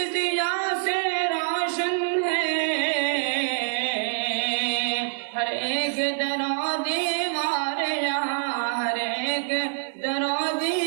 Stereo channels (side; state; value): left; silent; digital silence